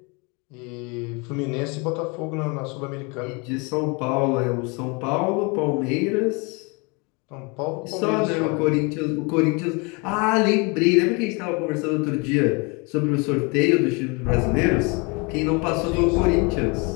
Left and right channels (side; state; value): right; quieter; 30.0 dB